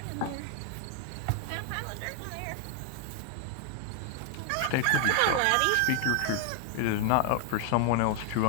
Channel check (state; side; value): different; both; correlation 0.01